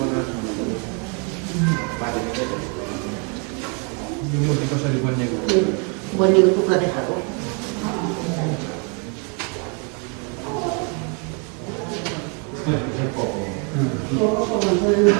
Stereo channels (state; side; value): quieter; left; 35.9 dB